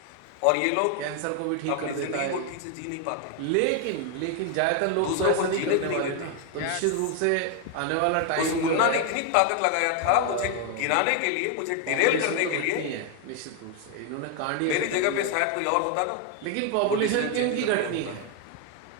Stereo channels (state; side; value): different; both; correlation 0.01